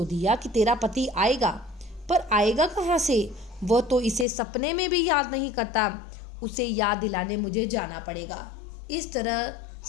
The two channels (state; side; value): drops out; right; at 4.2 s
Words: दिया कि तेरा पति आएगा, पर आएगा कहाँ से? वह तो इसे सपने में भी याद नहीं करता, उसे याद दिलाने मुझे जाना पड़ेगा। इस तरह